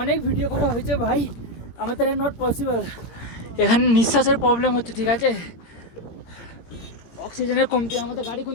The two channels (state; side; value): late; right; 17 ms